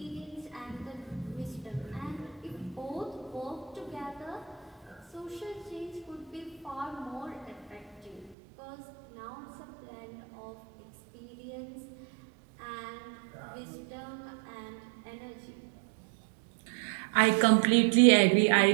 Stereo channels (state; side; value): drops out; left; at 8.3 s